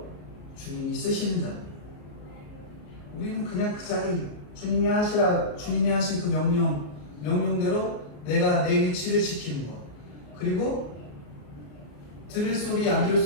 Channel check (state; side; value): late; right; 34 ms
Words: 주님이 쓰시는 자입니다. 우리는 그냥 그 자리, 주님이 하신 그 명령대로 내가 내 위치를 지키는 것. 그리고 들을 소리 안 들을